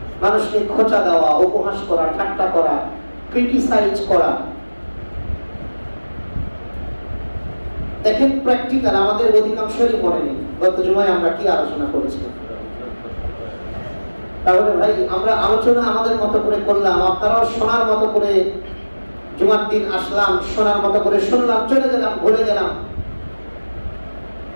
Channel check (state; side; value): inverted; both; correlation -1.00